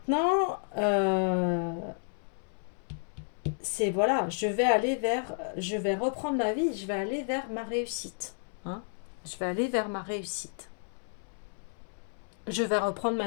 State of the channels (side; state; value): right; silent; 57 dB below the other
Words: c'est voilà, je vais reprendre ma vie, je vais aller vers ma réussite. Hein. Je vais aller vers ma réussite. Je vais reprendre